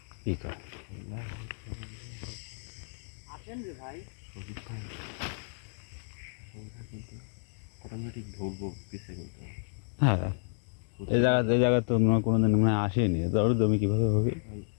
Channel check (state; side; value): silent; right; digital silence